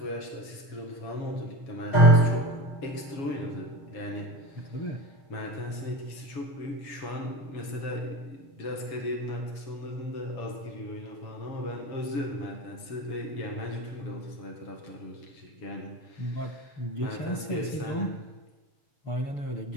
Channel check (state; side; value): late; right; 7.2 ms